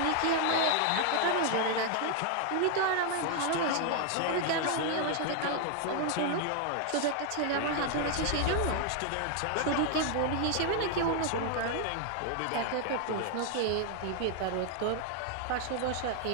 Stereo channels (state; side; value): different; both; correlation 0.00